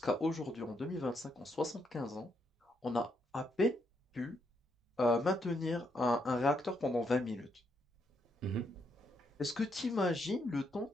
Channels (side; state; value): both; normal; correlation 0.77